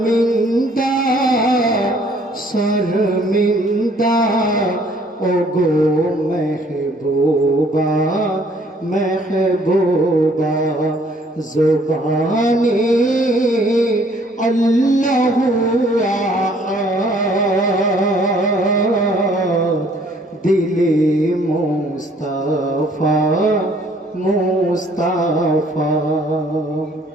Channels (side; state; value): both; normal; correlation 0.60